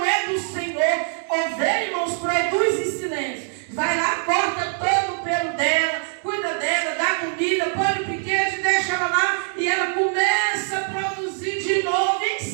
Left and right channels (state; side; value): silent; left; 63 dB below the other